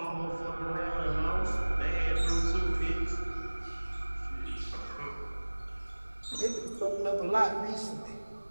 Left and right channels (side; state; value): both; inverted; correlation -1.00